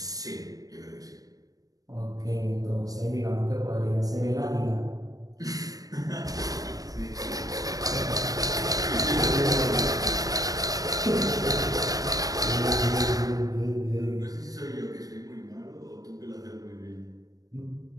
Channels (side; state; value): left; late; 0.18 ms